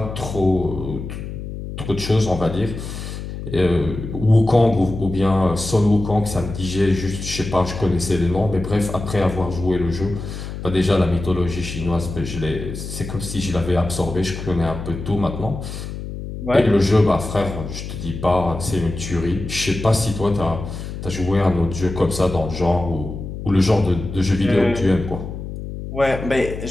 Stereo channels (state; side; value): noise; left; hum, 8 dB below the sound